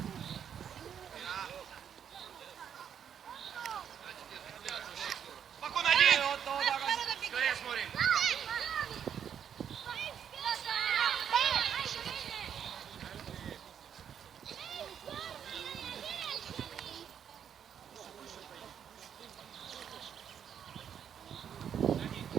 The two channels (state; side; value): quieter; left; 8.4 dB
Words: Спокойно, один. Скорее смотрим.